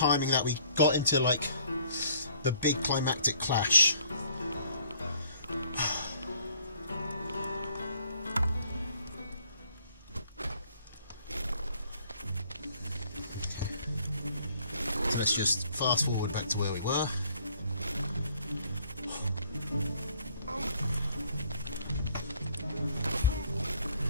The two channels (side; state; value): both; inverted; correlation -0.61